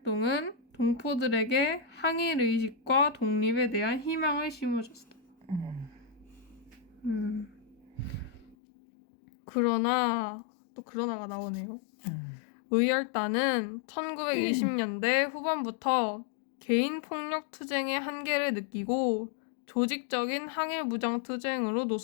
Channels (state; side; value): drops out; right; at 8.6 s